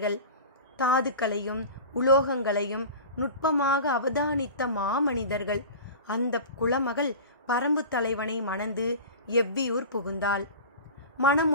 தாதுக்களையும் உலோகங்களையும் நுட்பமாக அவதானித்த மாமனிதர்கள். அந்த குலமகள் பரம்பு தலைவனை மணந்து எவ்வியூர் புகுந்தாள்.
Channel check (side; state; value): both; inverted; correlation -0.34